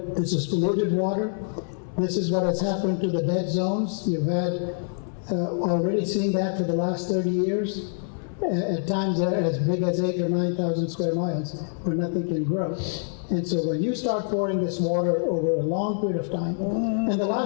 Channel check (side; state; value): right; silent; digital silence